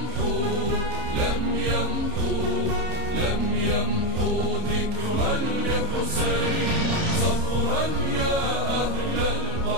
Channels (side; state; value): left; late; 30 ms